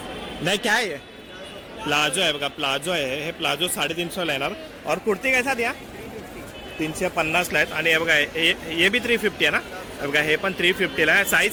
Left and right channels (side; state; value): both; identical; correlation 1.00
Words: नाही काय आहे? प्लाझो आहे बघा. प्लाझो आहे. हे प्लाझो 350ला येणार. और कुर्ती कैसा द्या? 350ला आहेत. आणि हे बघा हे बी 350 आहे ना. हे बघा हे पण 350ला आहे.